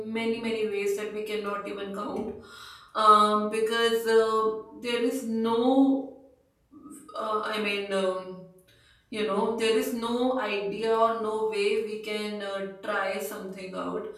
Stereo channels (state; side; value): identical; both; correlation 1.00